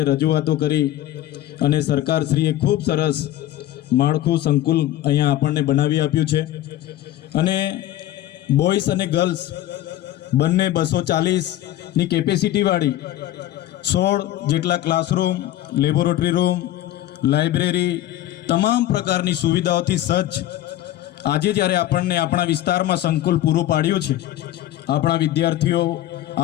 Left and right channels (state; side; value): quieter; right; 13.8 dB